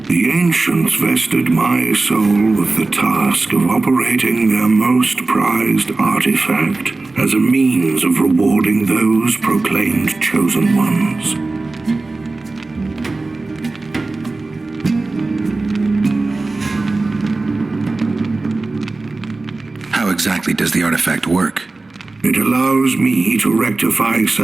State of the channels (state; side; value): quieter; left; 3.4 dB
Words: The ancients vested my soul with the task of operating their most prized artifact as a means of rewarding those proclaimed chosen ones. How exactly does the artifact work? It allows me to rectify